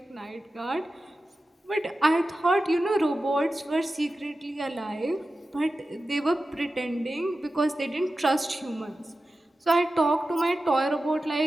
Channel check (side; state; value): both; normal; correlation 0.93